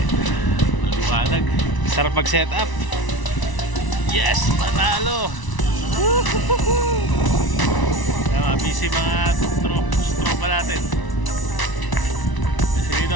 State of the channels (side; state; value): right; late; 1.0 ms